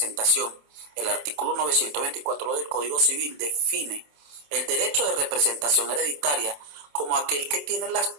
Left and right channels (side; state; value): left; late; 27 ms